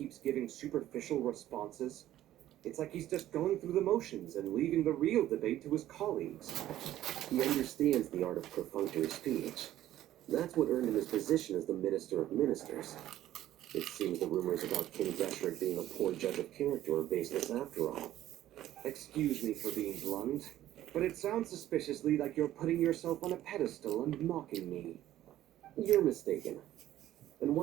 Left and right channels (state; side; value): quieter; left; 13.4 dB